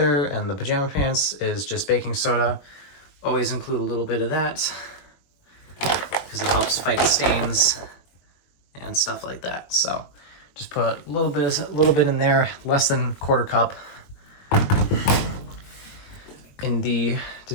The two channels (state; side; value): late; right; 21 ms